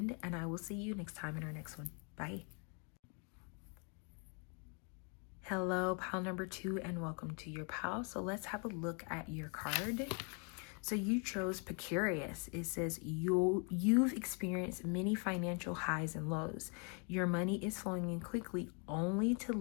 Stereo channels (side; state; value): right; quieter; 36.4 dB